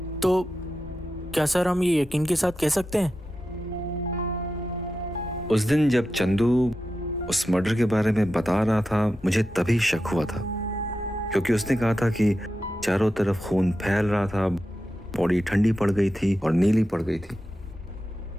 क्या सर हम ये यकीन के साथ कह सकते हैं? उस दिन जब चंदू उस मर्डर के बारे में बता रहा था, मुझे तभी शक हुआ था, क्योंकि उसने कहा था कि चारों तरफ खून फैल रहा था, बॉडी ठंडी पड़ गई थी और नीली पड़ गई थी।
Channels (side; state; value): both; normal; correlation 0.90